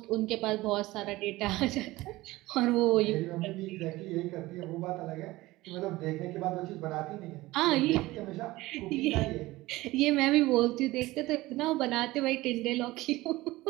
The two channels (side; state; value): left; quieter; 18.9 dB